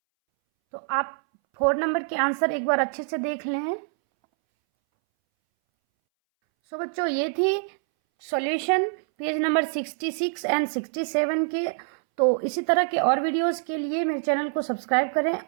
तो आप 4 नंबर के आंसर एक बार अच्छे से देख लें। सो बच्चों, ये थी सॉल्यूशन पेज नंबर 66 एंड 67 के। तो इसी तरह के और वीडियोस के लिए मेरे चैनल को सब्सक्राइब करें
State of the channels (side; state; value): left; silent; 61 dB below the other